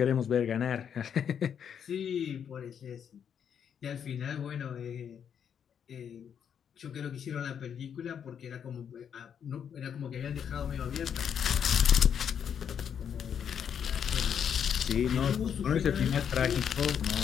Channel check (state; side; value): quieter; right; 8.1 dB